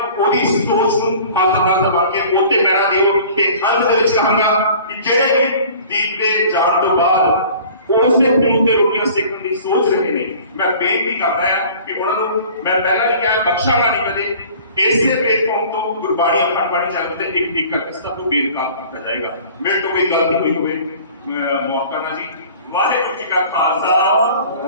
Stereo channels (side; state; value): both; inverted; correlation -0.46